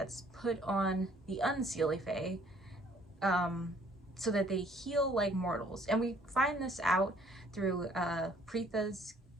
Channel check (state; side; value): normal; both; correlation 0.60